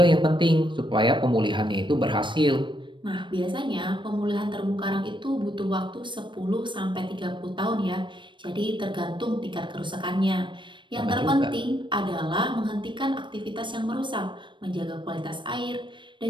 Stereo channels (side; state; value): left; late; 0.23 ms